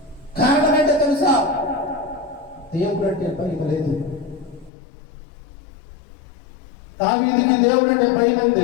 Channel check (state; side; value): drops out; right; at 4.7 s